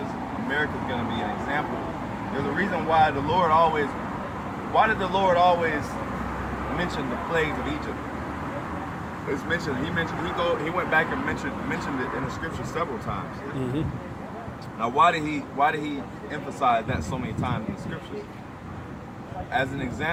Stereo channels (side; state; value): both; identical; correlation 1.00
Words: America's gonna be an example. There's a reason why did the Lord always mention the plagues of Egypt? It's mentioned, he went back and mentioned it in the scripture several times. Now why did he emphasize that so many times in the scriptures? As an